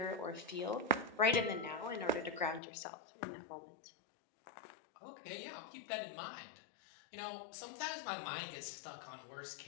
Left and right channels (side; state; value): right; drops out; at 2.6 s